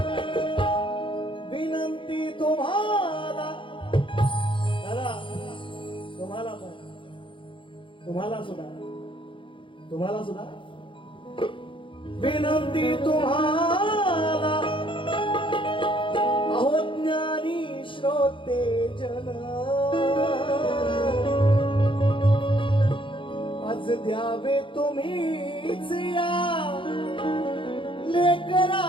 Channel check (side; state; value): right; late; 0.25 ms